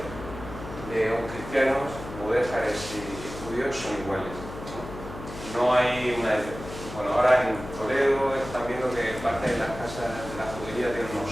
de cristianos, mudéjares y judíos son iguales. No hay una... Bueno, ahora en Toledo están viendo que parte de las casas de la judería tienen unos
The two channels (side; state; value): left; noise; hum, 12 dB below the sound